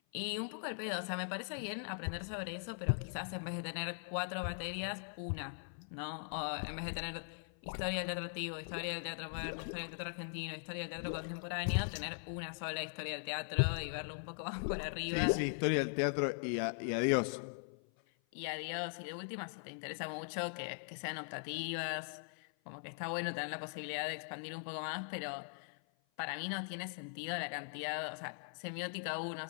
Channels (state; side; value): silent; right; 51 dB below the other